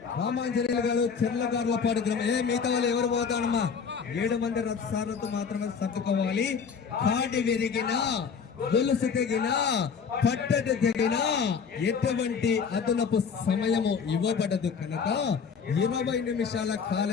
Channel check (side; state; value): right; quieter; 6.2 dB